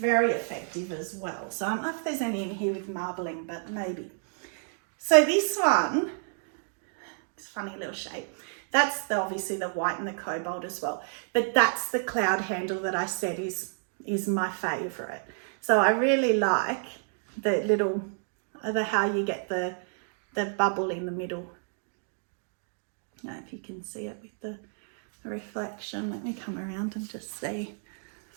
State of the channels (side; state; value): left; silent; 56 dB below the other